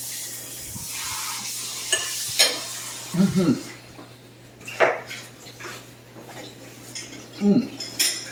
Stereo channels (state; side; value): identical; both; correlation 1.00